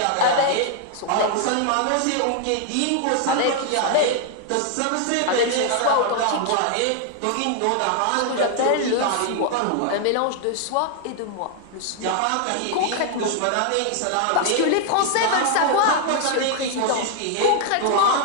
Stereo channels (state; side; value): different; both; correlation 0.00